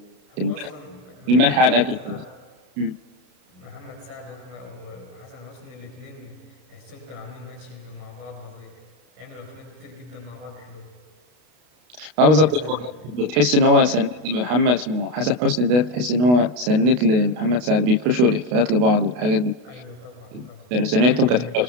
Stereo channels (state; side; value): late; left; 32 ms